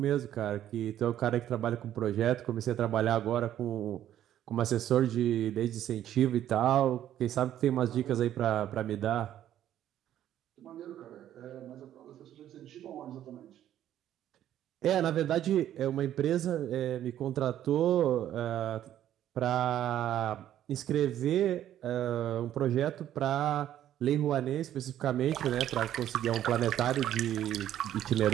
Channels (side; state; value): left; quieter; 11.5 dB